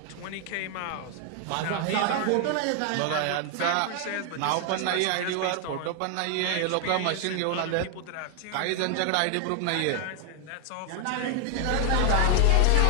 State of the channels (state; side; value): different; both; correlation 0.00